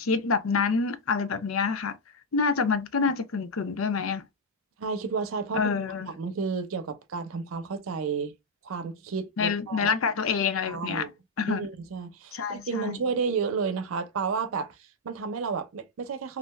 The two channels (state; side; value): normal; both; correlation -0.01